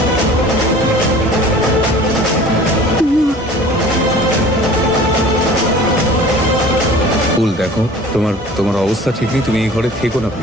ফুল দেখো, তোমার অবস্থা ঠিক নেই, তুমি এই ঘরে থেকো না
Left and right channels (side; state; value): both; normal; correlation 0.45